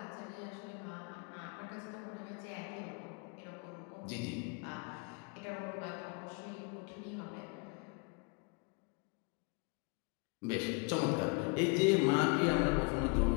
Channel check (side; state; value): right; quieter; 34.1 dB